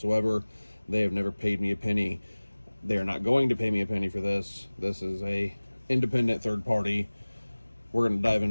They have never paid me a penny. They are not going to pay me a penny for this. This is a independent third party. We're going to dive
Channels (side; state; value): both; inverted; correlation -1.00